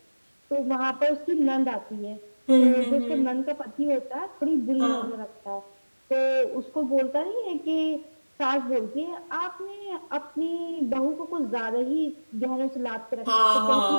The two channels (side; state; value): both; inverted; correlation -1.00